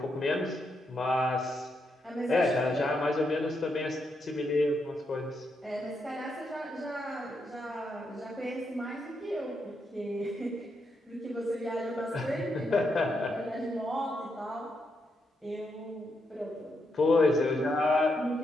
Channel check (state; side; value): normal; both; correlation 0.81